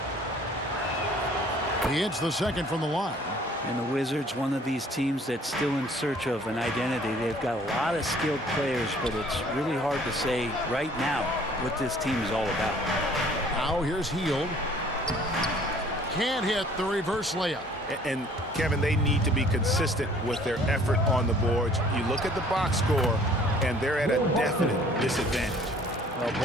He hits the second from the line. And the Wizards, one of these teams that's still in search of an identity. They've got a lot of skilled players, but it's really hard to say right now what this team is all about. Now here's Hield. Can't hit the reverse layup. And Kevin, they need to be consistent with their effort on the boards. You look at the box score, and they're at a definite disadvantage. Well,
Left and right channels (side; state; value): both; normal; correlation 0.55